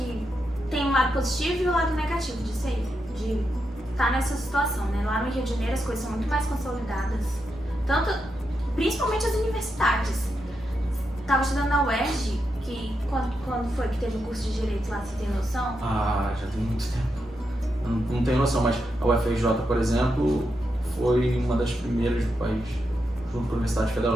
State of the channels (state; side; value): normal; both; correlation 0.85